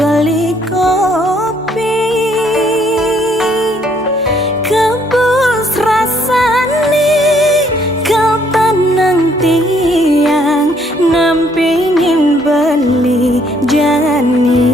kopi kebus rasane kau tenang tiang nampingin beli jani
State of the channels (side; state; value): right; noise; hum, 28 dB below the sound